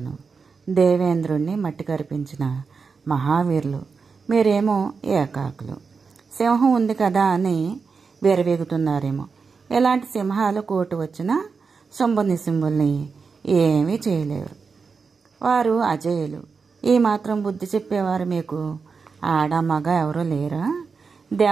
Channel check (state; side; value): quieter; left; 5.1 dB